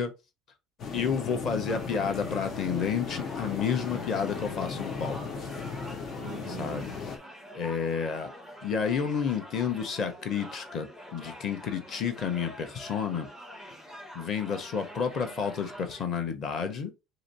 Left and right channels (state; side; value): quieter; right; 5.9 dB